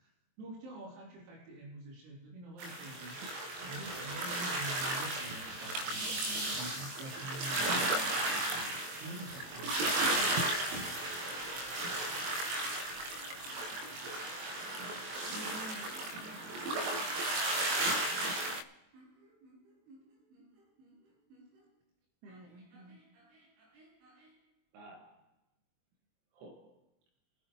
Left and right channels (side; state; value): left; late; 23 ms